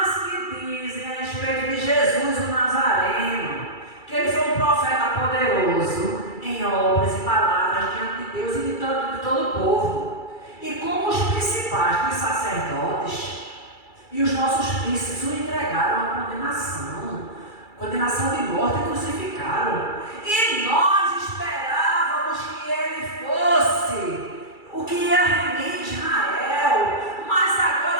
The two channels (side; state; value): right; late; 2.3 ms